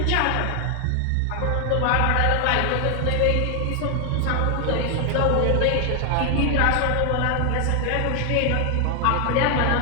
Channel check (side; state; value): both; different; correlation 0.00